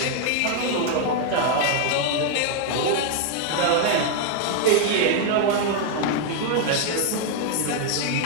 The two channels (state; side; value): different; both; correlation 0.00